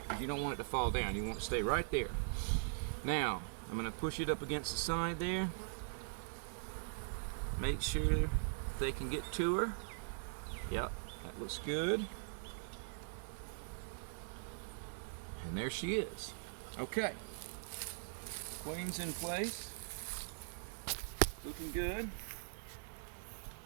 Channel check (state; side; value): silent; left; digital silence